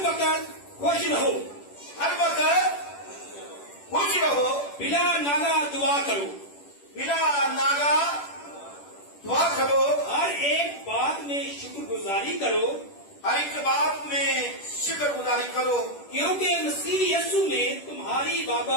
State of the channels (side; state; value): right; late; 10 ms